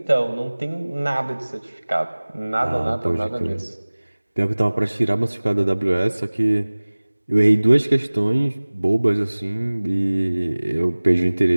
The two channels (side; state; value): both; inverted; correlation -1.00